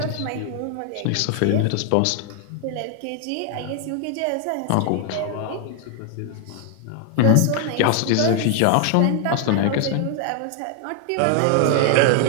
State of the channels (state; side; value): different; both; correlation 0.00